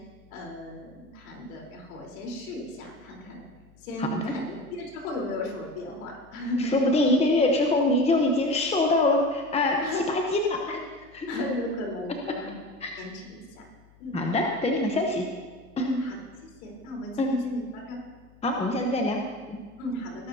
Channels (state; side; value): noise; left; hum, 27 dB below the sound